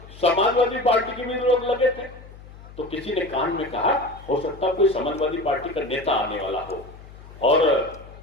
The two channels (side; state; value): left; noise; hum, 18 dB below the sound